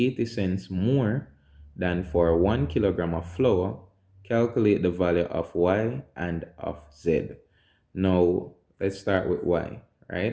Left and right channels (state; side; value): identical; both; correlation 1.00